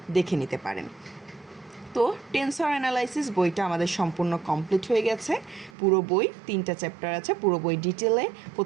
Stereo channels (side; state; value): left; drops out; at 5.7 s